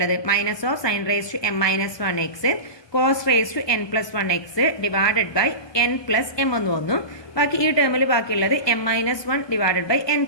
minus of sine raise to m minus one x cos raise to n plus one x divided by n plus m എന്ന് വന്നു. ബാക്കി ഈ ടേമിൽ ബാക്കിയുള്ളത് m minus one divided by n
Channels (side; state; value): right; late; 1.2 ms